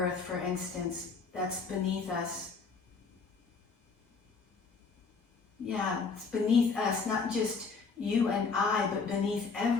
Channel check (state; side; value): quieter; right; 4.8 dB